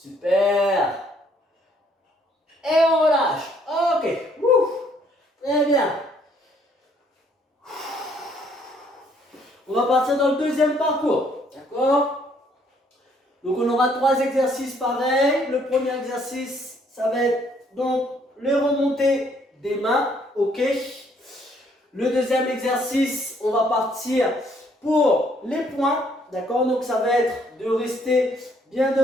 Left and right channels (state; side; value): normal; both; correlation 0.66